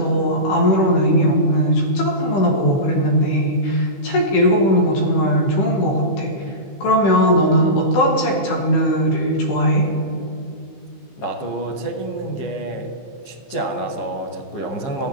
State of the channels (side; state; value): right; late; 15 ms